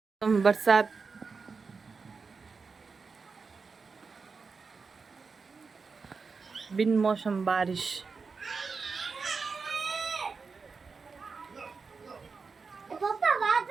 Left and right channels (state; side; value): quieter; left; 4.8 dB